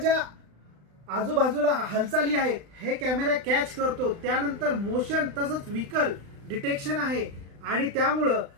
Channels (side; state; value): left; late; 35 ms